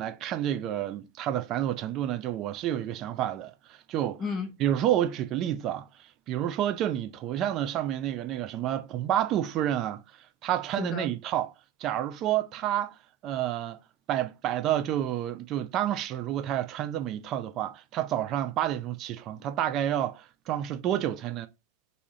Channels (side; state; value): left; quieter; 10.6 dB